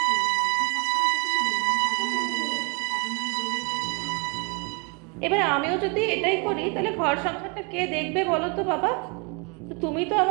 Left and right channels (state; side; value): quieter; left; 33.8 dB